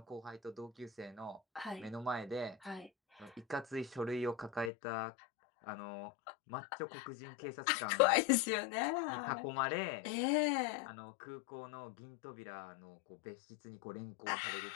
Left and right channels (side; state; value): right; drops out; at 4.7 s